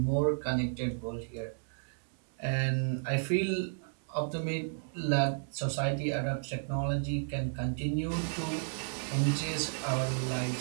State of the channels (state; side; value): silent; left; digital silence